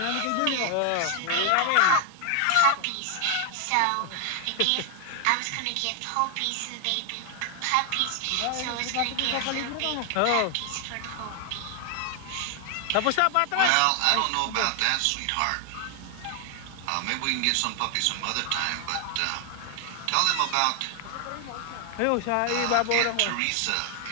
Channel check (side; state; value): both; different; correlation 0.00